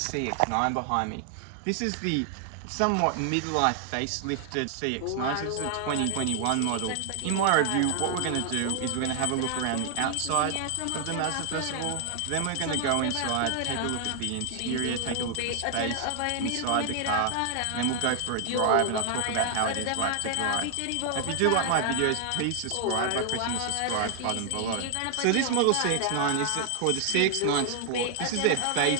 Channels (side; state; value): both; different; correlation 0.00